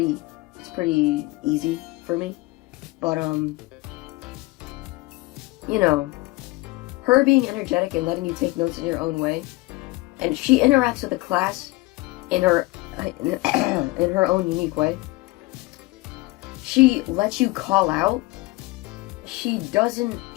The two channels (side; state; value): right; quieter; 21.5 dB